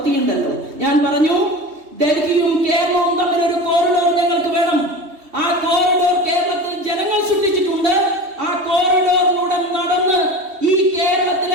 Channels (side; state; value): left; late; 3.2 ms